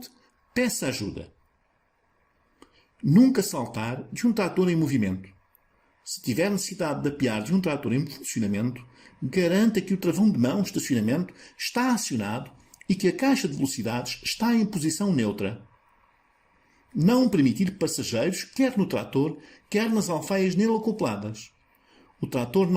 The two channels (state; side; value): identical; both; correlation 1.00